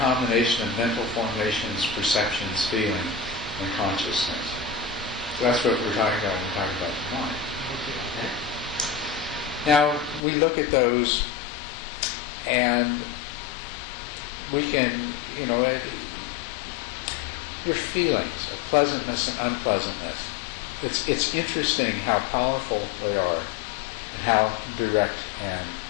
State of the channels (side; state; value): right; drops out; at 10.2 s